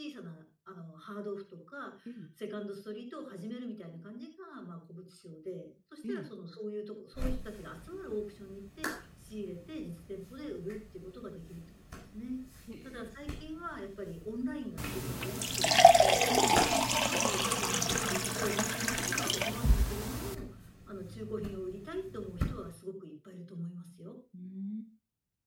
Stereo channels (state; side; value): identical; both; correlation 1.00